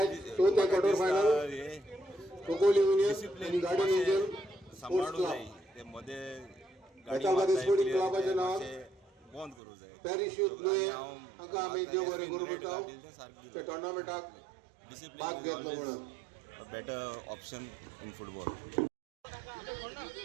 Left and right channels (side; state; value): left; drops out; at 9.6 s